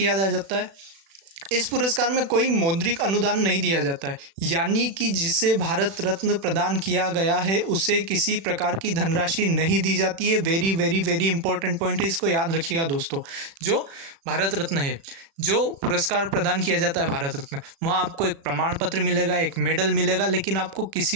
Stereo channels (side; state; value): left; late; 36 ms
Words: जाता है। इस पुरस्कार में कोई मौद्रिक अनुदान नहीं दिया जाता है, यानी कि जिसे भारत रत्न प्रदान किया गया है उसे किसी प्रकार की धनराशि नहीं दी जाती है। Very very very important point है, इसको याद रखिएगा दोस्तों। जो भारत रत्न है, जो पुरस्कार प्रदान किया जाता है भारत रत्न, वहाँ आपको एक प्रमाण पत्र मिलेगा, एक मेडल मिलेगा, लेकिन आपको